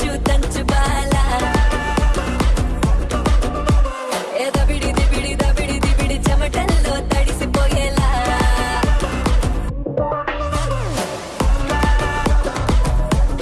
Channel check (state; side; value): identical; both; correlation 1.00